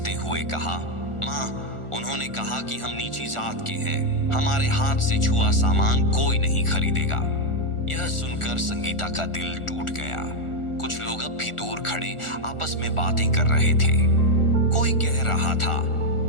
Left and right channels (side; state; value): right; late; 1.4 ms